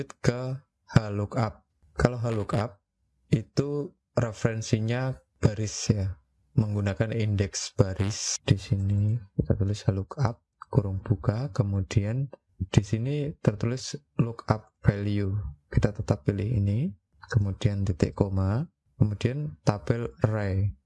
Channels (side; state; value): both; identical; correlation 1.00